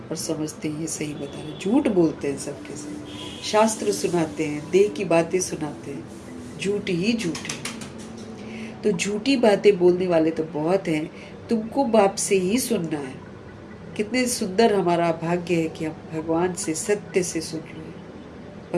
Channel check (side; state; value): both; identical; correlation 1.00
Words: और समझते हैं ये सही बता रहे, झूठ बोलते हैं सबके साथ, शास्त्र सुनाते हैं, देह की बातें सुनाते हैं, झूठ ही झूठ है। तो झूठी बातें बोलने वाले तो बहुत हैं, तुमको बाप से ही सुनना है। कितने सुंदर हमारा भाग्य है कि हम भगवान से सत्य से सुन रहे हैं।